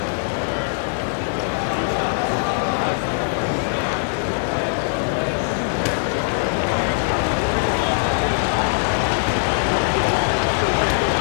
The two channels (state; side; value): silent; right; digital silence